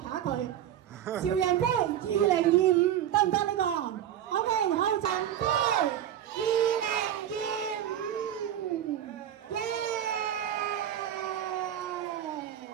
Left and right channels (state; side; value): quieter; left; 10.7 dB